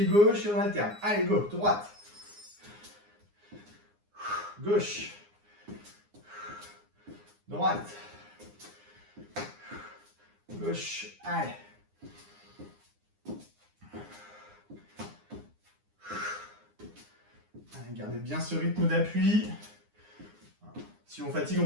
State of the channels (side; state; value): left; late; 9.7 ms